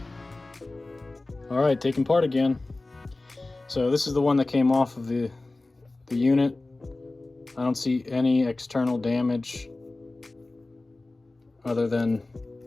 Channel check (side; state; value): right; quieter; 3.1 dB